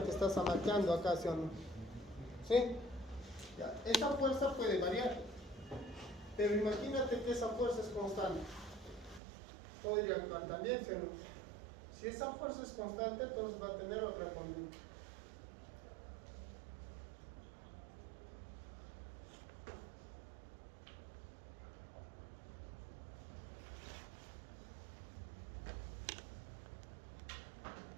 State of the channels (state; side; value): drops out; left; at 9.2 s